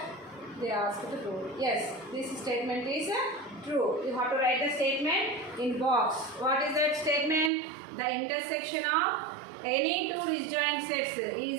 they asked to prove. Yes, this statement is true. You have to write the statement in box. What is that statement? The intersection of any two disjoint sets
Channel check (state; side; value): drops out; left; at 7.5 s